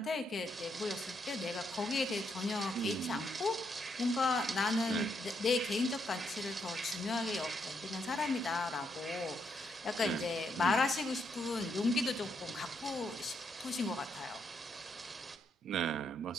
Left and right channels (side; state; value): both; normal; correlation 0.77